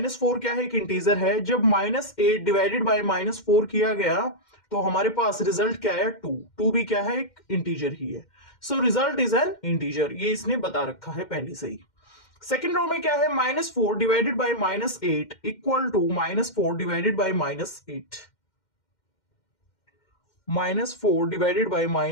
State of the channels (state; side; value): late; right; 2.1 ms